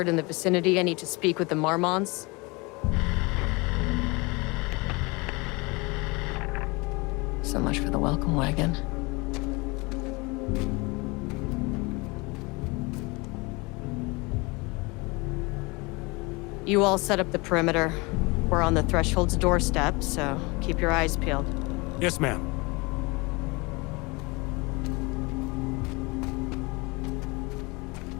in the vicinity. I need to speak with the Marmons. So much for the welcome wagon. You all set up the perimeter. We're on the Threshold's doorstep, so keep your eyes peeled. Yes, ma'am.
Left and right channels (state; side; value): quieter; right; 26.3 dB